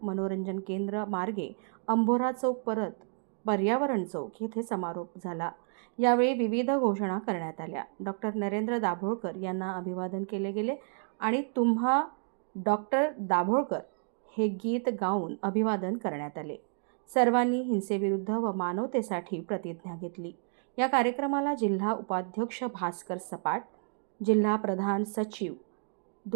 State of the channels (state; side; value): silent; left; 57 dB below the other